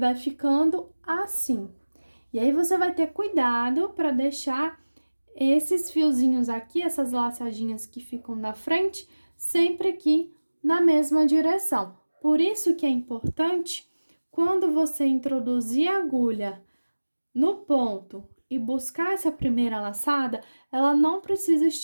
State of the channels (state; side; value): inverted; both; correlation -1.00